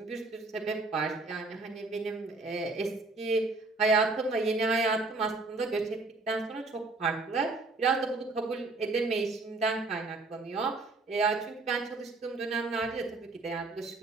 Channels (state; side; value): quieter; left; 3.4 dB